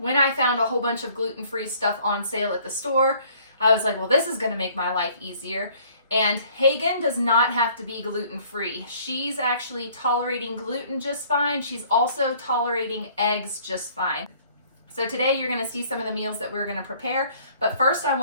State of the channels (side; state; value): both; inverted; correlation -0.57